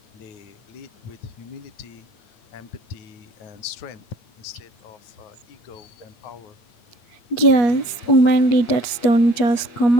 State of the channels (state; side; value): late; right; 8.4 ms